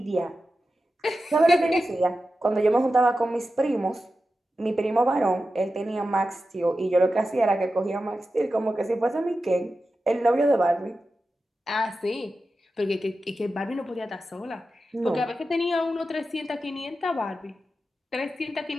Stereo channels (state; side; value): normal; both; correlation 0.92